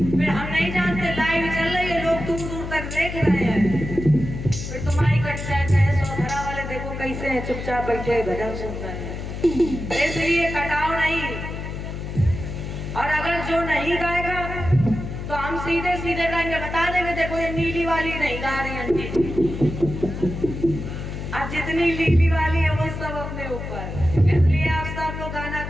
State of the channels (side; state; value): left; noise; hum, 7 dB below the sound